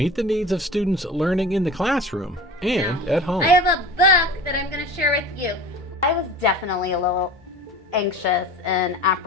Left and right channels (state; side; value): normal; both; correlation 0.37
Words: the needs of students learning in the classroom and at home. I have a book that I'm going to share with you. I was definitely a little anxious and